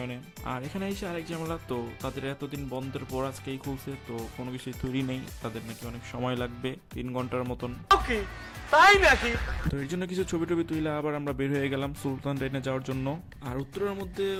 আর এখানে এসে আরেক ঝামেলা, তো তাদের এতদিন বন্ধের পর আজকেই খুলছে, তো কোনো কিছুই তৈরি নেই, তাদের নাকি অনেক সময় লাগবে 3 ঘন্টার মতন। তাই নাকি? তো এর জন্য কিছু ছবি টবি তুলে আবার আমরা বের হয়ে গেলাম সুলতান ডাইনে যাওয়ার জন্য। আর উত্তরের মধ্যে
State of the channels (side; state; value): both; identical; correlation 1.00